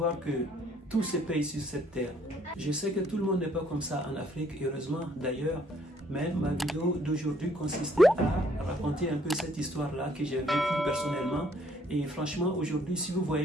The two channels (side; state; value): both; normal; correlation 0.64